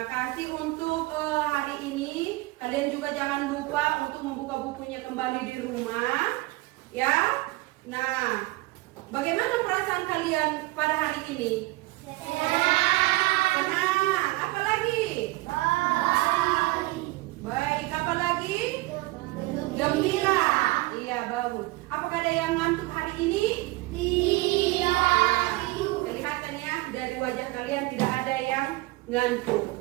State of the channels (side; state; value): left; quieter; 20.8 dB